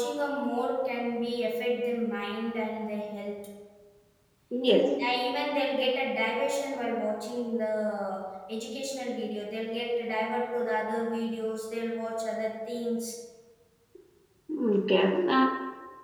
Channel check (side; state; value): both; identical; correlation 1.00